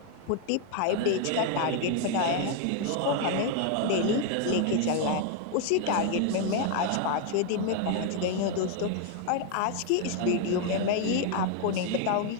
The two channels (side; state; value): both; different; correlation 0.01